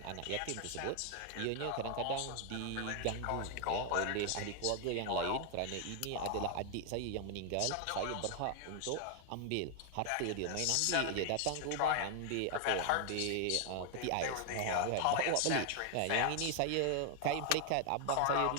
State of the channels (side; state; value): both; different; correlation 0.00